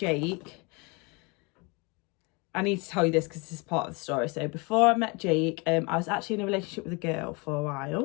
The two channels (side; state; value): right; quieter; 29.0 dB